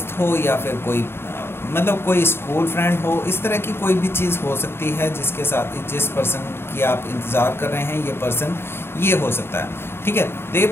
हो या फिर कोई मतलब कोई स्कूल फ्रेंड हो, इस तरह की कोई भी चीज़ हो सकती है जिसके साथ जिस पर्सन की आप इंतज़ार कर रहे हैं ये पर्सन ये हो सकता है, ठीक है। तो ये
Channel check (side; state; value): right; late; 0.12 ms